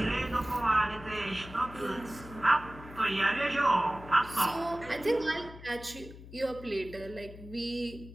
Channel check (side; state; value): left; noise; hum, 16 dB below the sound